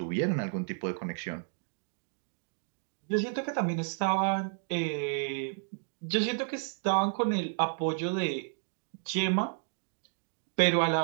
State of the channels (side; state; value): left; silent; digital silence